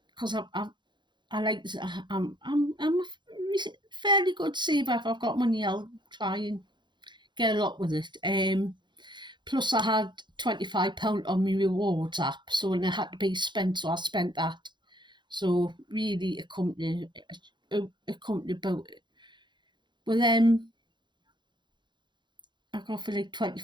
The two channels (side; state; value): left; late; 0.22 ms